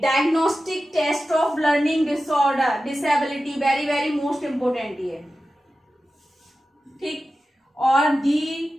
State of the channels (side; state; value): both; normal; correlation 0.93